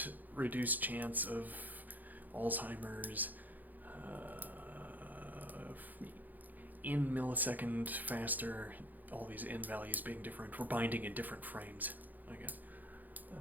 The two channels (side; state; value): left; late; 0.083 ms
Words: reduced chance of Alzheimer's, in millisecond faster, all these in values being different. We're binding in different frames, I guess.